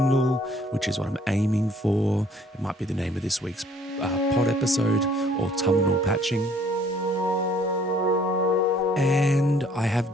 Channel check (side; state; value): both; normal; correlation 0.60